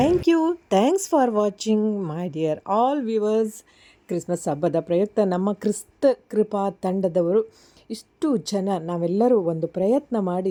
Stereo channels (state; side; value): identical; both; correlation 1.00